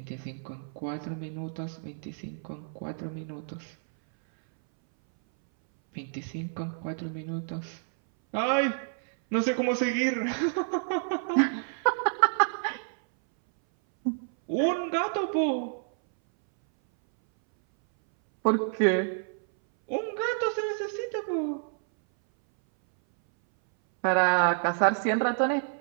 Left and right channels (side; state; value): left; silent; 59 dB below the other